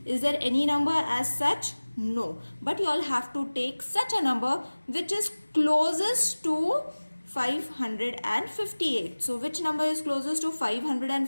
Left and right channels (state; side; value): inverted; both; correlation -1.00